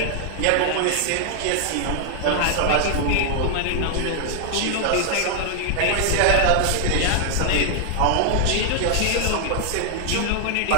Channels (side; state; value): both; different; correlation 0.00